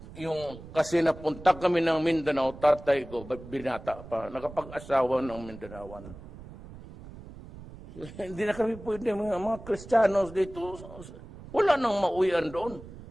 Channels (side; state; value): right; noise; rumble, 16 dB below the sound